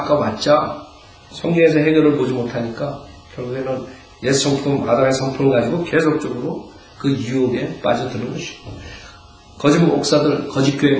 성경에서 해결을 보지 못하니까 결국에는 옛 성품, 아담의 성품을 가지고 계속적으로 그 유혹에 빠져드는 것이고 거짓 목사들, 거짓 교회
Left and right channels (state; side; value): identical; both; correlation 1.00